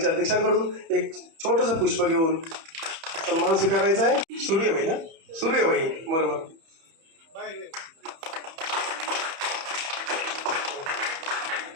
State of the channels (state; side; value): late; left; 31 ms